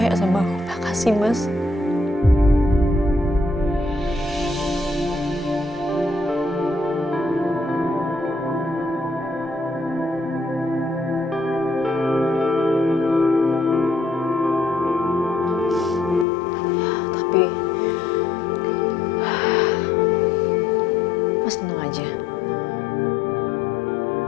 sama aku. Makasih, Mas. Tapi Mas tenang aja.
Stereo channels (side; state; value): right; drops out; at 16.2 s